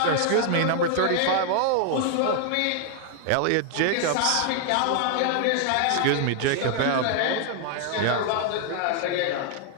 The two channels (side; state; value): both; different; correlation 0.00